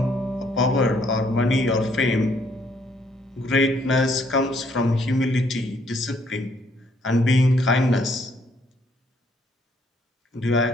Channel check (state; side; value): normal; both; correlation 0.67